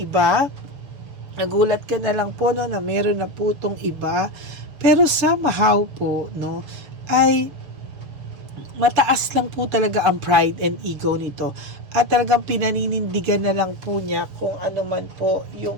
Nagulat ka na lang po, no, na meron na po tong iba. Pero somehow po, no, ay mataas lang po talaga ang pride and ego nito. At talagang pinaninindigan na lang po niya kung ano man po yung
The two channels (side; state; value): left; late; 6.8 ms